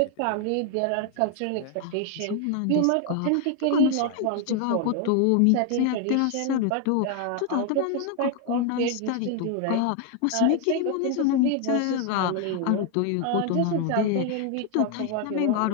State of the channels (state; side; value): different; both; correlation 0.01